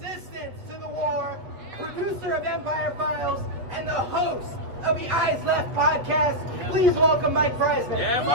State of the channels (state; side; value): late; left; 8.1 ms